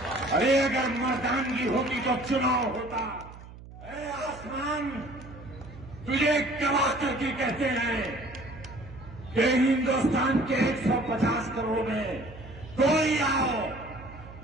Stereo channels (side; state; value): right; noise; hum, 17 dB below the sound